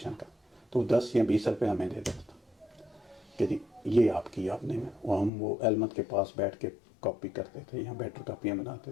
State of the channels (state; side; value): drops out; right; at 5.3 s